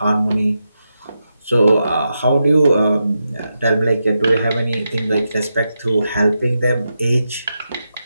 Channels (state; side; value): inverted; both; correlation -0.87